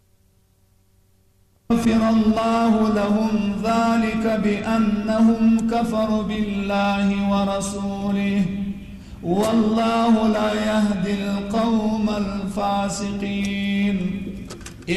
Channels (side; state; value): both; identical; correlation 1.00